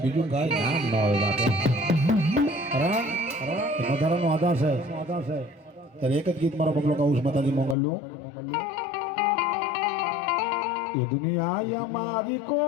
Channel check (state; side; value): drops out; right; at 7.8 s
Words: બીજું કાંઈ નામ ન હોય. વધારાનો આધાર છે. ત્યારે એક જ ગીત મારો પગલો કહું છું માતાજી મંગળનું. એ દુનિયા મારી